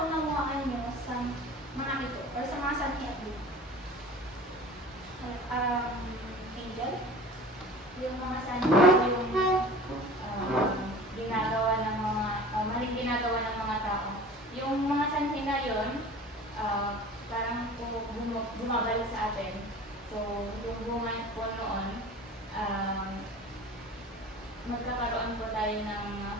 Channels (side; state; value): both; normal; correlation 0.40